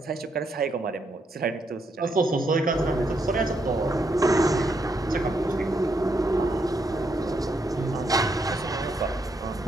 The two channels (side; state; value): both; normal; correlation 0.78